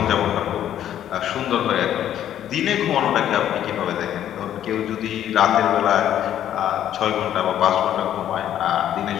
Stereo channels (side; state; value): right; quieter; 11.0 dB